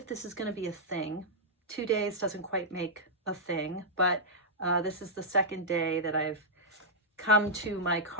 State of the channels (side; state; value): both; normal; correlation -0.09